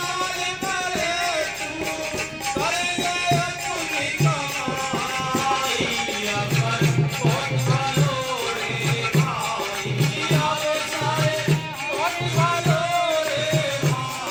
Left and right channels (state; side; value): identical; both; correlation 1.00